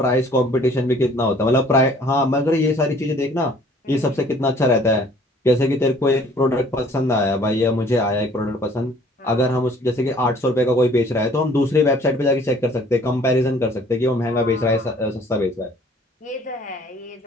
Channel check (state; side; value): normal; both; correlation 0.55